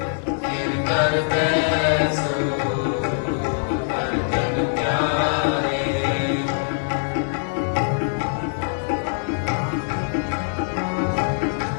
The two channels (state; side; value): silent; right; digital silence